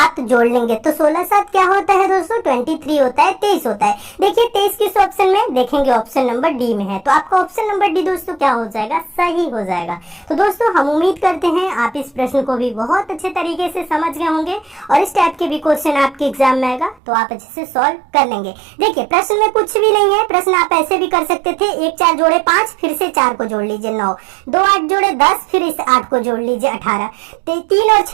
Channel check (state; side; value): drops out; left; at 17.0 s